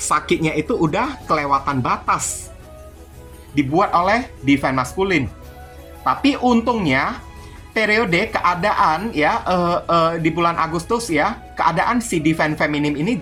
itu udah kelewatan batas dibuat oleh Divine Masculine. Tapi untungnya periode keadaan ya di bulan Agustus ya, keadaan si Divine Feminine ini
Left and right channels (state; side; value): identical; both; correlation 1.00